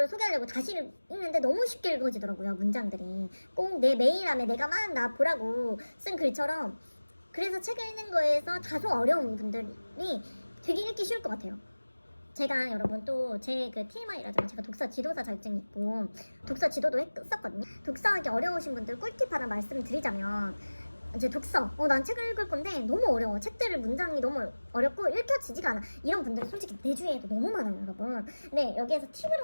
소개하려고 다시 읽는데 너무 쉽게 읽어지더라고요. 문장들이 꼭 내 메일함에 내가 막 나 보라고 쓴 글처럼. 그래서 책을 읽는 거에서 다소 어려운 분들이 되게 읽기 쉬울 것 같아요. 제가 여러분 또 제 그 TMI라잖아요. 제가 독서 지도사 자격증이 있고 독서 지도도 했었거든요. 독서하기 어려우신 분들 꿀팁 하나 말씀드리자면, 이제 독서, 난 책을 읽을 건데 너무 어려워. 책들을 문장이 너무 어렵고 읽혀지지가 않아. 이런 분들이 솔직히 내 주위에도 너무 많아요, 여러분. 근데 여기에서 팁을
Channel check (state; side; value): inverted; both; correlation -1.00